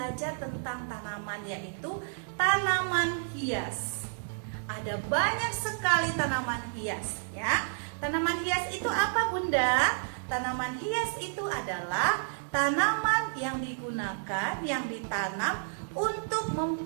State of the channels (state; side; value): silent; left; digital silence